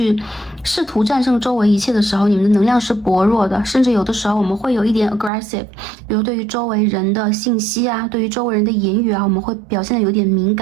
试图战胜周围一切的时候，你们的能量是薄弱的，甚至有的时候我们会有一点 aggressive， 比如对于周围人的信息啊，对于周围人的言语啊，我们会表现的有点敏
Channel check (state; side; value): drops out; left; at 5.3 s